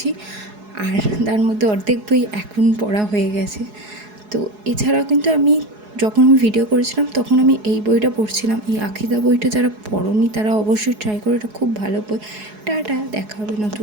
আর তার মধ্যে অর্ধেক বই এখন পড়া হয়ে গেছে। তো এছাড়াও কিন্তু যখন আমি ভিডিও করেছিলাম তখন আমি এই বইটা পড়ছিলাম। এই আখিদা বইটা যারা পড়োনি তারা অবশ্যই ট্রাই করো, এটা খুব ভালো বই। টাটা, দেখা হবে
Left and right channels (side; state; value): left; late; 4.8 ms